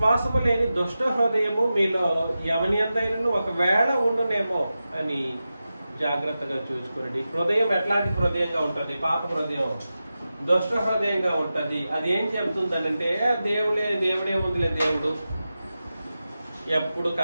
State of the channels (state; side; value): inverted; both; correlation -0.93